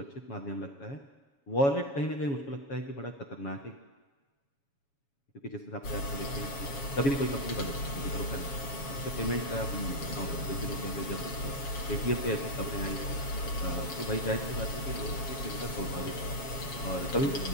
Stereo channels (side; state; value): right; late; 7.2 ms